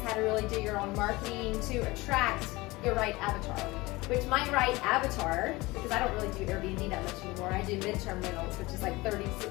how to really do your own marketing to attract your right avatar. Which my right avatar, because I don't really do Airbnb that much anymore, I do midterm rentals, which is like 30,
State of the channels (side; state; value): right; quieter; 21.6 dB